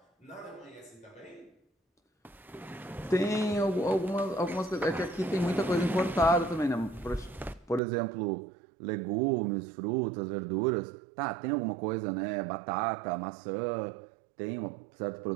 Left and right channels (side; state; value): left; drops out; at 7.8 s